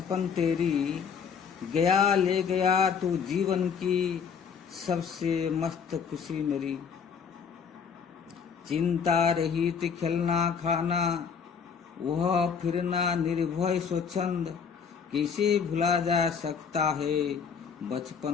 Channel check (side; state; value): right; quieter; 6.6 dB